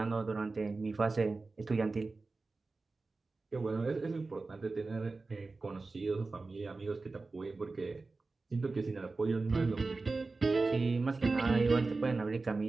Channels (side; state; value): left; quieter; 3.7 dB